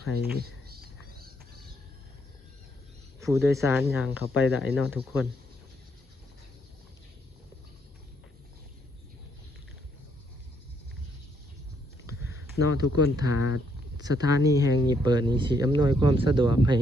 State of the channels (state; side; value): normal; both; correlation 0.73